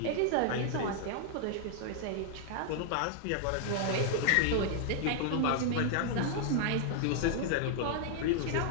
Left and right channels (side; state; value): both; different; correlation 0.00